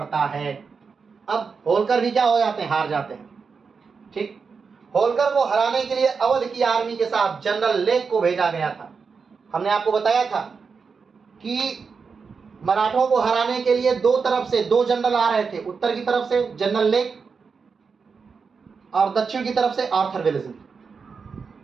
है। अब होलकर भी क्या हो जाते हैं? हार जाते हैं, ठीक। होलकर को हराने के लिए अवध की आर्मी के साथ जनरल लेक को भेजा गया था। हमने आपको बताया था कि मराठों को हराने के लिए 2 तरफ से 2 जनरल आ रहे थे। उत्तर की तरफ से जनरल लेक और दक्षिण की तरफ से आर्थर वेलेस्ली,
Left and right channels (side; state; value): left; quieter; 5.3 dB